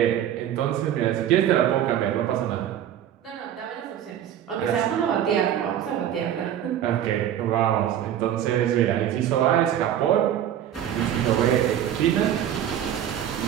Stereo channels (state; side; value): quieter; left; 10.6 dB